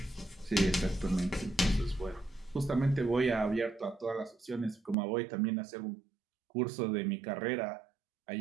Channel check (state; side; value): drops out; left; at 5.0 s